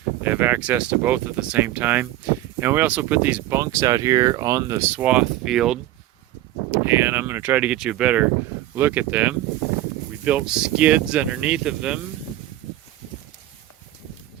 They have access to both at the same time. And we also put these bunks out here on the swath field, and I'm going to try to get you a better look at them. We built skids underneath of them,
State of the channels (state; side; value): quieter; left; 14.7 dB